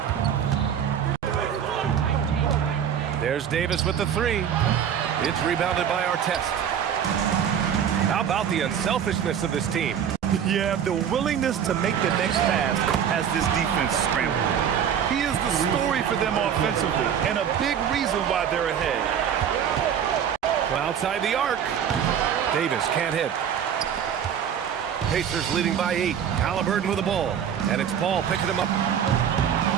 There's Davis with the 3. It's rebounded by Artest. How about the unselfishness of this team? Yeah, the willingness to make the next pass has this defense scrambled. He is the story for them offensively, and a big reason why they're ahead. Outside the arc. Davis can't hit. Pacers leading by 8. Halliburton with the ball. And it's Paul picking him up.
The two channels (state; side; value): quieter; left; 8.5 dB